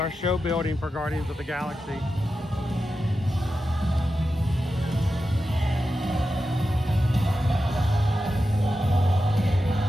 show building for Guardians of the Galaxy.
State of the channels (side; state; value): both; normal; correlation 0.91